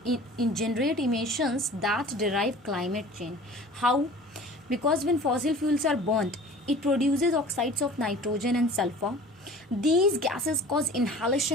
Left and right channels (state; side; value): normal; both; correlation 0.44